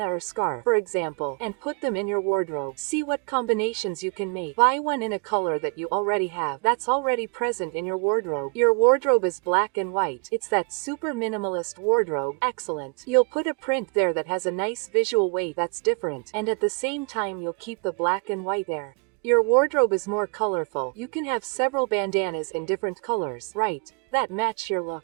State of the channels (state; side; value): quieter; left; 35.3 dB